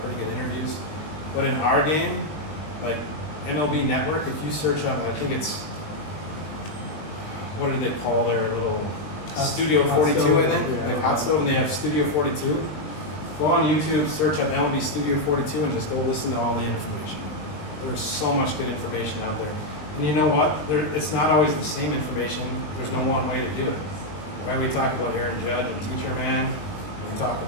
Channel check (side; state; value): right; late; 20 ms